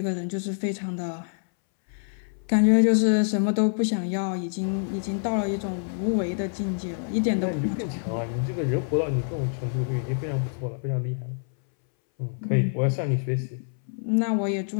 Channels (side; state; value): right; silent; 61 dB below the other